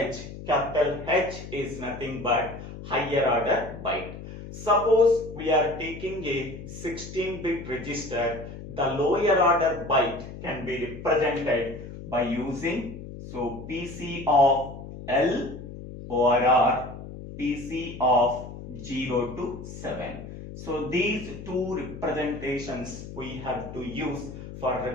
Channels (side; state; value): left; noise; hum, 12 dB below the sound